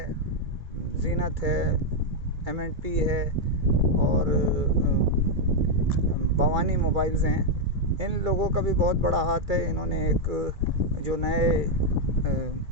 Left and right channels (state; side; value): late; left; 2.3 ms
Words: जीनत है, एम&पी है और भवानी मोबाइल्स हैं, इन लोगों का भी बहुत बड़ा हाथ है। इन्होंने एक जो नए